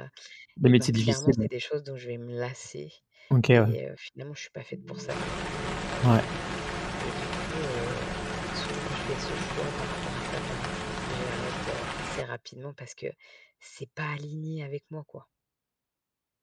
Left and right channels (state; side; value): identical; both; correlation 1.00